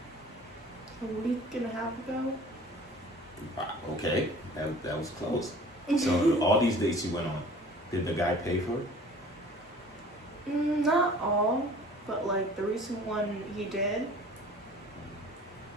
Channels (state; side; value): normal; both; correlation 0.47